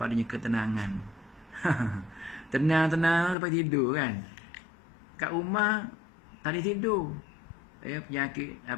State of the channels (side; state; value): right; drops out; at 3.4 s